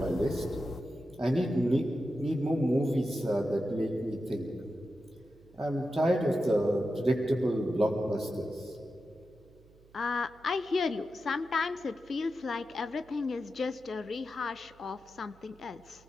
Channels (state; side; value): noise; right; hum, 26 dB below the sound